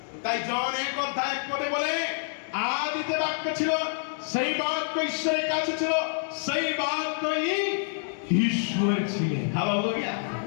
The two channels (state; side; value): silent; right; digital silence